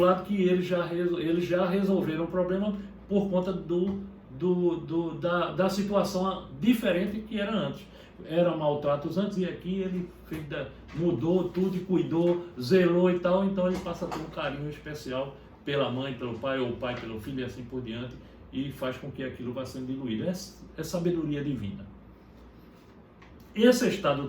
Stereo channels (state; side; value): identical; both; correlation 1.00